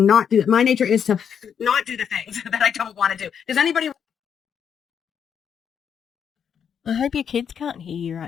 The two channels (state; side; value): quieter; right; 7.8 dB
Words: do it. My nature is to not do the things that I don't want to do. Does anybody... I hope your kids can't hear you